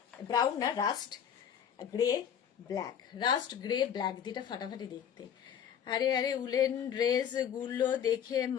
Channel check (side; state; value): right; quieter; 8.6 dB